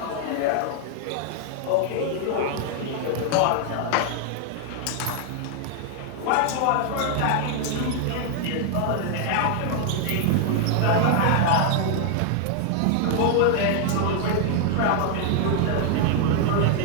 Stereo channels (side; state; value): both; different; correlation 0.00